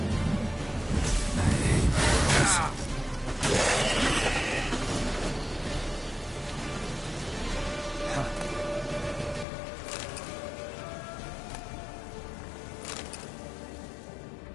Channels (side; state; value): right; drops out; at 9.5 s